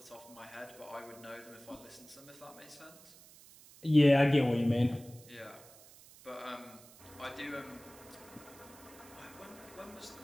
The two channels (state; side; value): noise; right; hiss, 21 dB below the sound